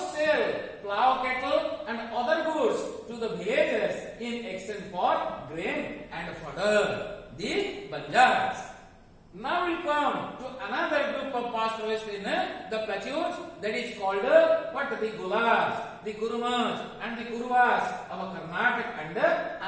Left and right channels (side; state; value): both; identical; correlation 1.00